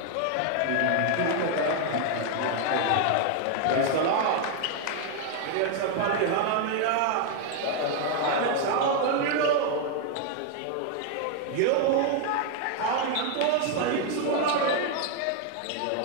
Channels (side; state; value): both; different; correlation 0.01